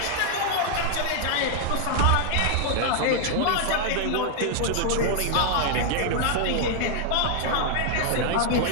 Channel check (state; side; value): different; both; correlation 0.00